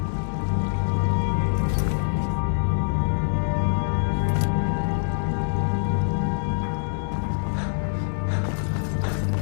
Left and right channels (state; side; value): silent; right; 62 dB below the other